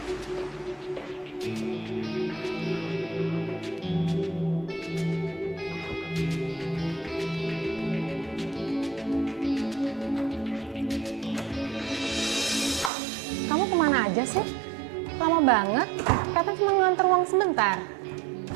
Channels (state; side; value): drops out; left; at 12.9 s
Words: Kamu kemana aja sih? Lama banget. Katanya cuma nganter uang sebentar.